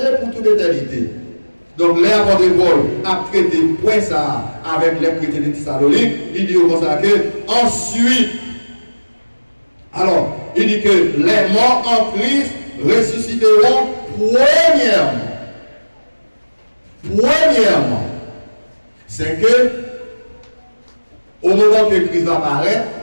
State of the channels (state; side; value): inverted; both; correlation -1.00